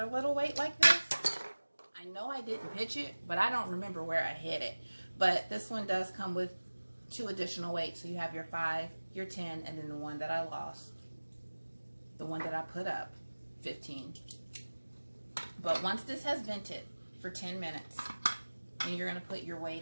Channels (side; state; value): both; inverted; correlation -1.00